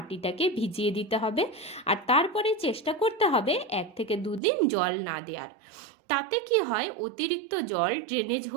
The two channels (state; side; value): drops out; left; at 4.4 s